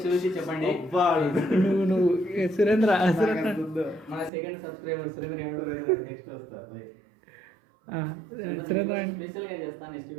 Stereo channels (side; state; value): left; drops out; at 4.3 s